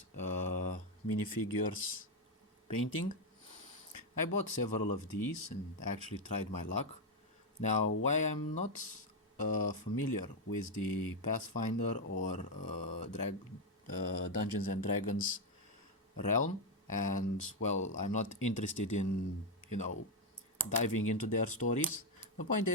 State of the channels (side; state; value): both; normal; correlation 0.05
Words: minifigures painting. I bought several of these and actually tried my luck. Now, why I'm not familiar with the Pathfinder or Dungeons and Dragons realm, and well, I'm not interested in diving into their stories. The point